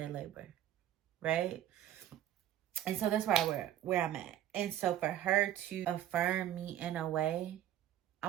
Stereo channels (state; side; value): quieter; left; 11.9 dB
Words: labor, right? And so that's where I'm at. And so for her to affirm me in a way,